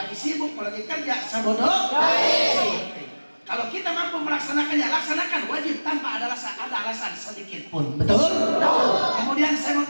sibuk, mau lagi kerja, sabodo. Kalau kita mampu melaksanakannya, laksanakan wajib tanpa ada alasan sedikit pun. Betul? Kemudian saya mau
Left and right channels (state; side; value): inverted; both; correlation -1.00